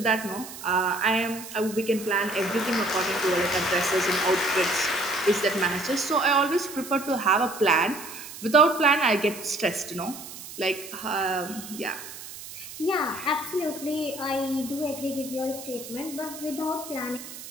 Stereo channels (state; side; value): noise; right; hiss, 13 dB below the sound